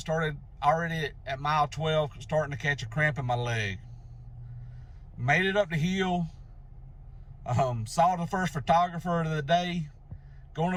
Started already at mile 12, starting to catch a cramp in my leg. Made it up the hill. Saw the first photographer of the day. Going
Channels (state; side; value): identical; both; correlation 1.00